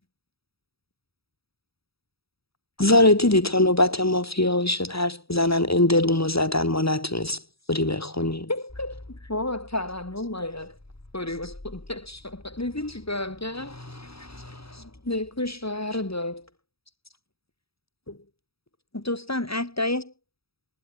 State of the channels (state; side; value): late; right; 0.77 ms